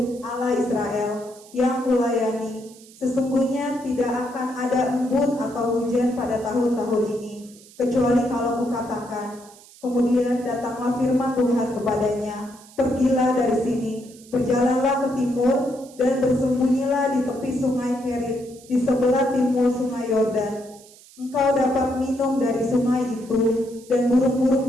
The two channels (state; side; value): noise; right; hiss, 23 dB below the sound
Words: Allah Israel, yang kulayani, sesungguhnya tidak akan ada embun atau hujan pada tahun-tahun ini, kecuali kalau kukatakan. Kemudian datanglah firman Tuhan kepadanya, pergilah dari sini, berjalanlah ke timur, dan bersembunyilah di tepi sungai Kerit, di sebelah timur sungai Yordan. Engkau dapat minum dari sungai itu, dan burung-burung